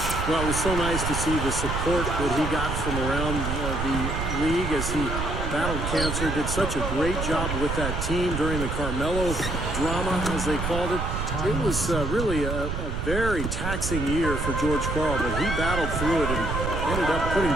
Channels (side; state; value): right; noise; rumble, 3 dB below the sound